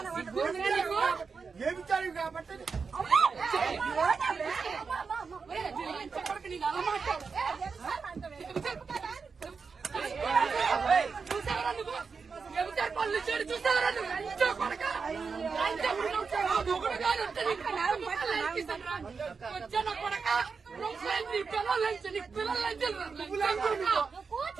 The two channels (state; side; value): quieter; left; 5.2 dB